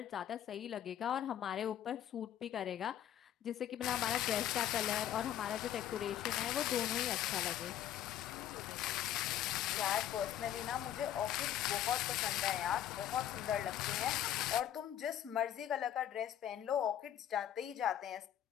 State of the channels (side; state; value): right; quieter; 11.1 dB